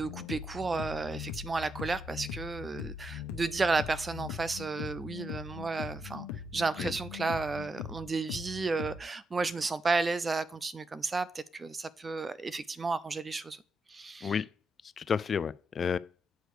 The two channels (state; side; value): normal; both; correlation 0.82